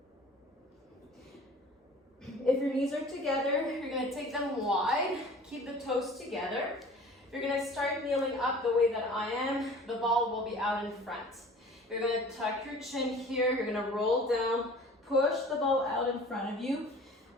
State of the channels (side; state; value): both; normal; correlation 0.45